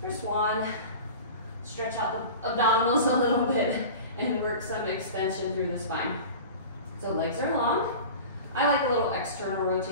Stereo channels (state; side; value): inverted; both; correlation -0.35